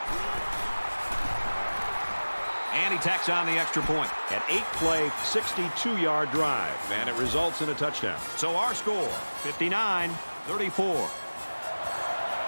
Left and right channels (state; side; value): inverted; both; correlation -1.00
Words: And he tacks on the extra point. An 8-play, 62-yard drive, and it results in a touchdown. So our score, 59-34.